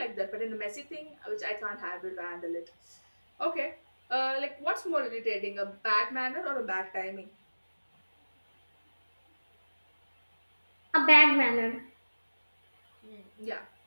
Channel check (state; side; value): inverted; both; correlation -1.00